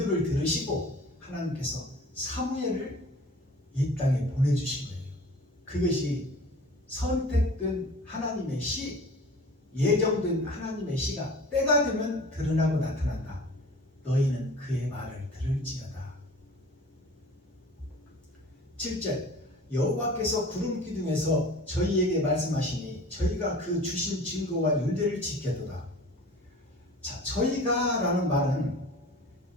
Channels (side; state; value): both; normal; correlation 0.43